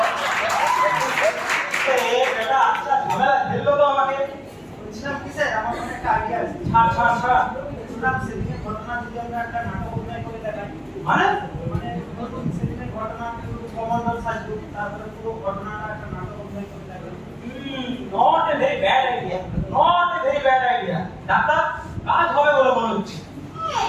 ए बेटा अच्छा झमेला खेल लो तो আমাকে বলছিলাম কি স্যার, আমার মনে একটা আইডিয়া আছে। ছাড় শুনলাম সেদিনের ঘটনা যদি আমরা একটা নাটক অভিনয় করে দেখাই, মানে মানে ধরুন সেদিনের ঘটনা কমান্ডার সাজু, তারপরে পুরো ঘটনাটা একটা নাটক অভিনয় করে দেখাই। Not a very bad idea, not a very bad idea. Doctor কাজ হবে বলে মনে হচ্ছে।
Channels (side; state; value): both; identical; correlation 1.00